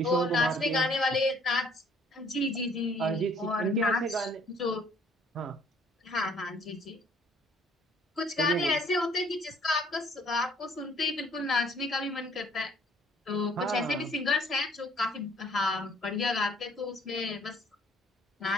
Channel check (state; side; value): normal; both; correlation 0.60